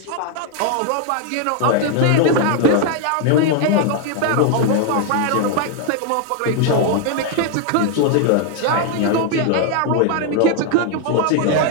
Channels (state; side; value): different; both; correlation 0.00